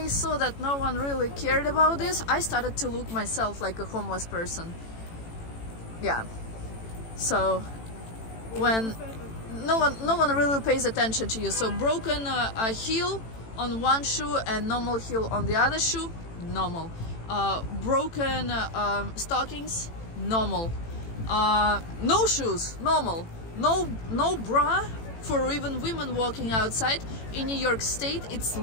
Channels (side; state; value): right; late; 18 ms